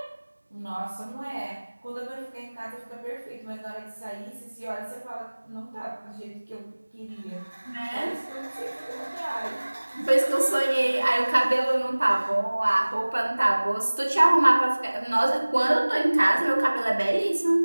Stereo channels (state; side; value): inverted; both; correlation -1.00